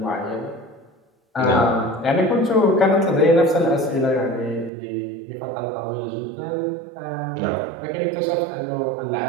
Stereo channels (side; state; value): left; drops out; at 4.7 s